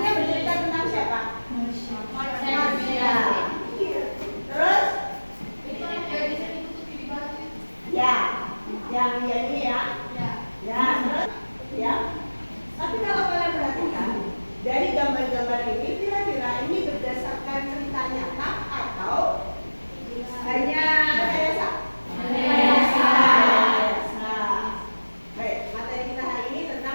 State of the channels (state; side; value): inverted; both; correlation -1.00